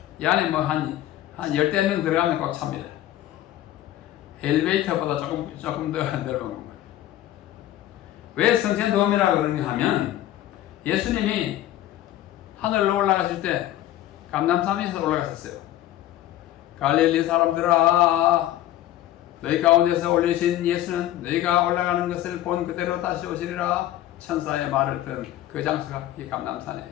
이 안에 뭐 한 10명 들어가면 꽉 찹니다. 엘리베이터보다 조금 더 넓은 겁니다. 왜 승천돔이라고 그러냐 하면, 예수님이 하늘로 올라가실 때 감람산에서 올라갔었어요. 갈릴리 사람들아, 너희 가운데서 올리신 예수는 너희가 올라가는 것을 본 그대로 다시 오시리라 천사의 말을 들은 그 장소가 이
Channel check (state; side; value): quieter; right; 13.6 dB